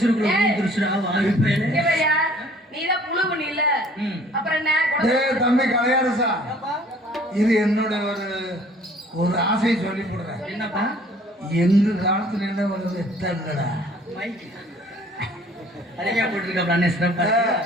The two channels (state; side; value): normal; both; correlation 0.54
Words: வந்துருச்சுடா வாய் பேரு. இங்க பாரியா, நீதான் புழு பண்ணி இல்ல. அப்புறம் என்ன? டேய் தம்பி கலையாரசா, இது என்னோட ஒரு ஆசையை சொல்லி போடுறேன். என்னப்பா? எங்க காலத்துல என்ன ஒரு வெத்தங்கடா மைக் அழகா போட்டுருக்காப்ல அண்ணே சிறப்பா.